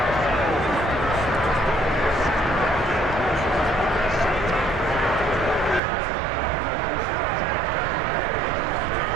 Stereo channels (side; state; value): left; drops out; at 5.8 s